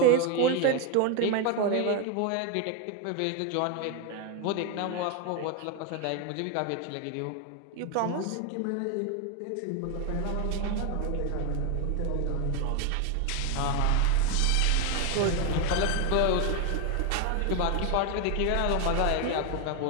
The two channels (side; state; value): both; different; correlation 0.01